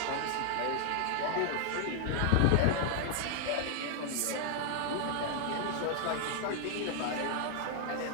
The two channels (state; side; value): different; both; correlation 0.00